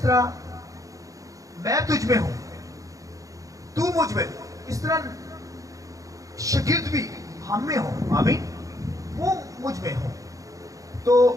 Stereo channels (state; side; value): late; left; 0.16 ms